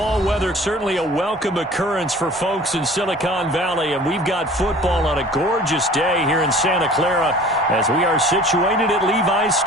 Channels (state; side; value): normal; both; correlation 0.46